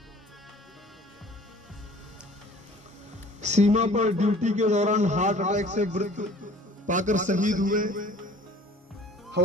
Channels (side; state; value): both; normal; correlation 0.49